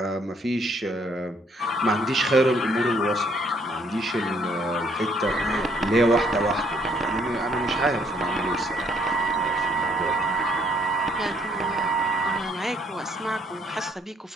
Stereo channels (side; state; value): both; normal; correlation 0.66